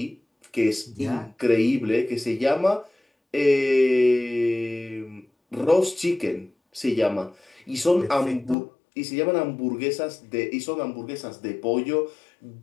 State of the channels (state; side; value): drops out; right; at 8.6 s